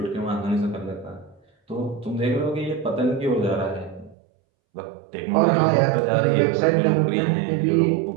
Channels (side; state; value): left; drops out; at 4.2 s